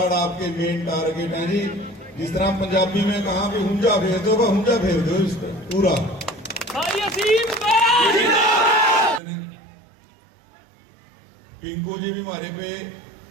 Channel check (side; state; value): left; drops out; at 9.2 s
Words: आपके मेन टारगेट हैं जी। जिस तरह पंजाबी में कहा भी हुंजा फेर दो, हुंजा फेर दो इस पर पूरा। पिंकू जी भी हमारे पे